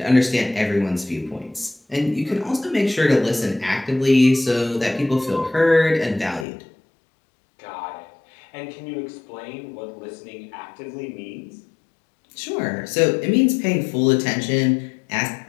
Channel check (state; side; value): drops out; right; at 6.5 s